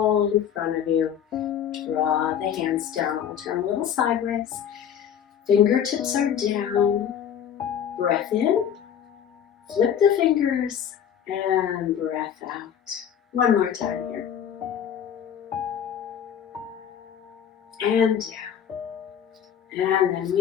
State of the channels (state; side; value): quieter; right; 8.9 dB